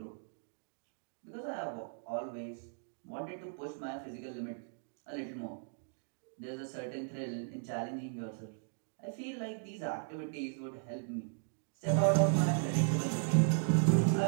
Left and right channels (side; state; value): left; silent; digital silence